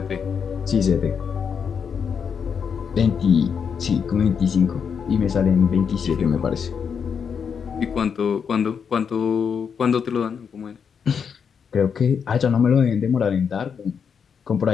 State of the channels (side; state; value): right; quieter; 6.8 dB